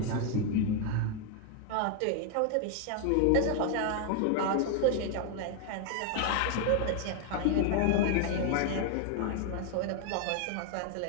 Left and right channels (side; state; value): both; different; correlation 0.00